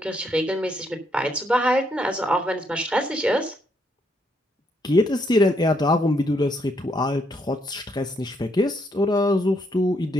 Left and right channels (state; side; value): normal; both; correlation 0.74